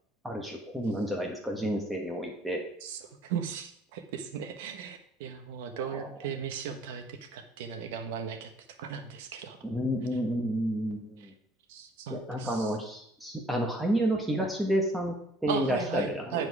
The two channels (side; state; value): both; normal; correlation 0.57